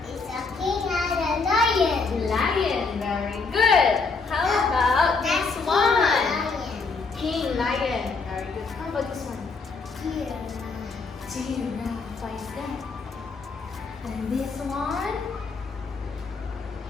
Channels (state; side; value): quieter; right; 4.4 dB